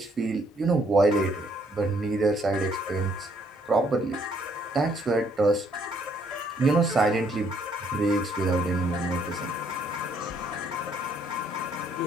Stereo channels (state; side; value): normal; both; correlation 0.67